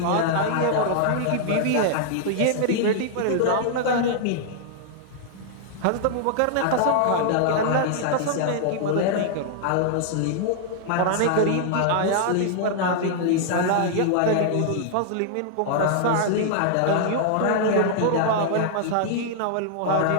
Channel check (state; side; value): different; both; correlation -0.01